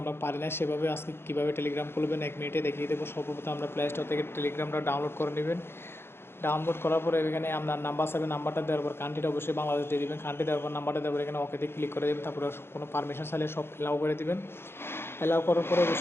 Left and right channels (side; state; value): right; late; 0.11 ms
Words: আমরা পারি না সেভাবে। আজকে কীভাবে টেলিগ্রাম খুলবেন 1 মিনিটে দেখিয়ে দেবো। সর্বপ্রথম আমরা প্লে স্টোর থেকে টেলিগ্রামটা ডাউনলোড করে নেবেন। ডাউনলোড করার পরে এখানে আপনার নাম্বার চাইবে, নাম্বারটা দেওয়ার পর কান্ট্রিটা অবশ্যই বাংলাদেশ দিয়ে দেবেন। কান্ট্রি দেওয়ার পর নাম্বারটা দেওয়ার পর এখানে ওকেতে ক্লিক করে দেবেন। তারপরে কোনো পারমিশন চাইলে সব অ্যালাউ করে দেবেন। অ্যালাউ করার পরে